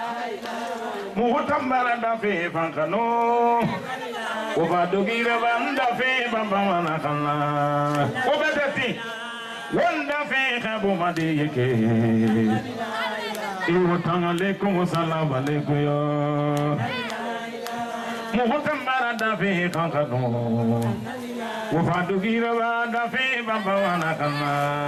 Mutambara da fe fankano Wafadugira ba da fe baba wanakana Obetati Wanda fe khabu madiyeke Iwotanga lekum salam alaikum yo Muhtambara dafi kankano Wafadugira ba dafi baba wanakana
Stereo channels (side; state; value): both; identical; correlation 1.00